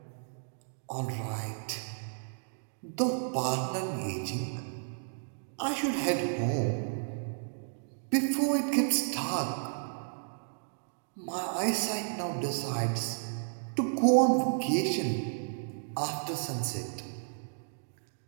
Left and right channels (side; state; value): left; silent; digital silence